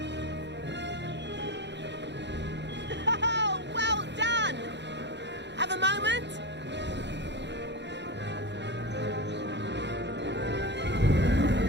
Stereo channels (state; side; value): late; left; 0.51 ms